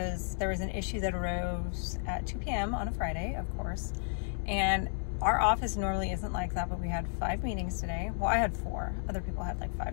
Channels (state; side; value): silent; right; 56 dB below the other